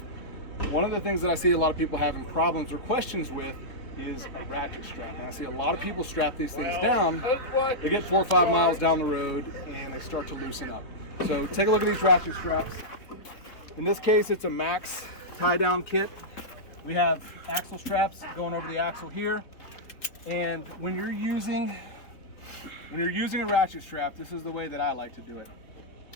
One of the things that I see a lot of people having problems or questions with is a ratchet strap. And I see a lot of people strap these things down, they get 4 or 5 miles down the road and they start to loosen up. So take a look at these ratchet straps. In this case, it's a max tie down kit. We have axle straps going over the axle here. And when you're using a ratchet strap, this is the way that I like to do it.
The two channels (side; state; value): right; late; 3.5 ms